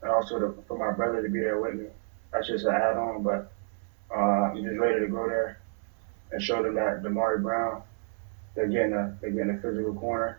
and also for my brother to be there with me. That's just an add-on, but I'm just ready to go there and show them that Damari Brown, they're getting a physical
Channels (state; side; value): silent; left; 58 dB below the other